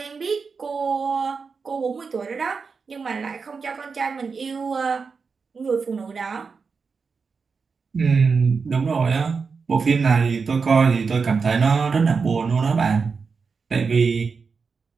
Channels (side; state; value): left; quieter; 5.1 dB